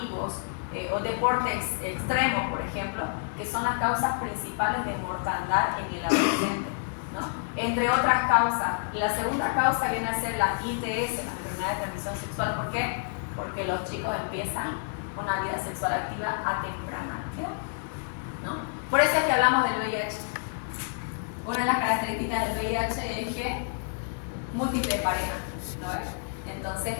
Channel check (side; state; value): right; silent; digital silence